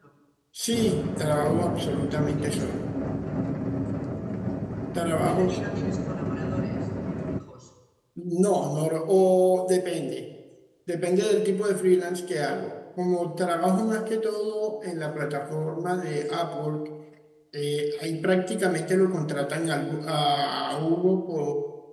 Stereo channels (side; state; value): both; identical; correlation 1.00